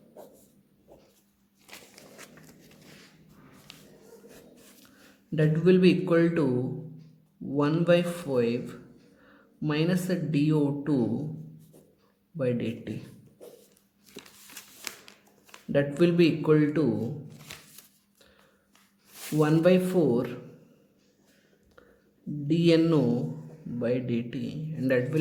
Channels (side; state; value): both; identical; correlation 1.00